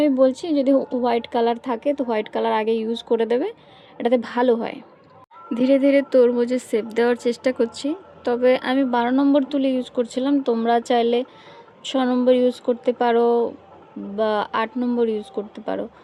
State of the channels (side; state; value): both; identical; correlation 1.00